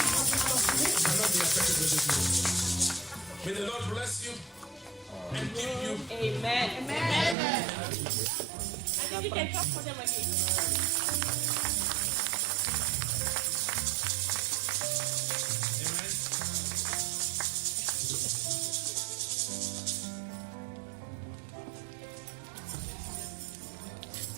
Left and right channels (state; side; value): drops out; left; at 7.4 s